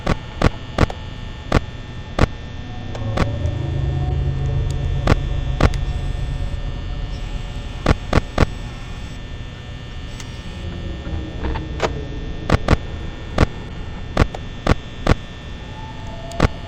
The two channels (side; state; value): both; identical; correlation 1.00